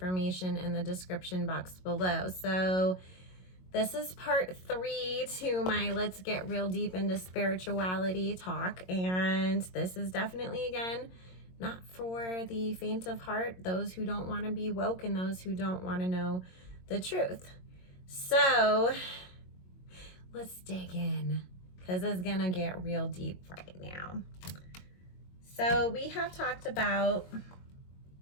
in the description box below. So this is part 3 to my Let's Get Real Deep into Spirituality talk, and this is definitely, again, not for the faint of heart, those who don't want to be woke and those who don't want to know the truth. So let's dig in, because it's gonna get real deep right now. So we have talked about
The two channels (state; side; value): late; right; 22 ms